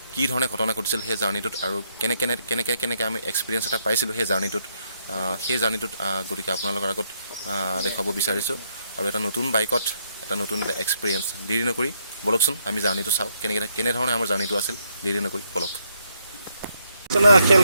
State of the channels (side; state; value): both; inverted; correlation -0.75